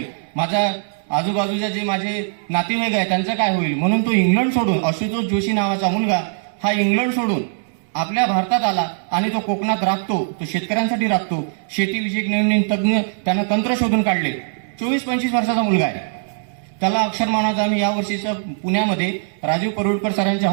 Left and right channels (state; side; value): silent; left; 65 dB below the other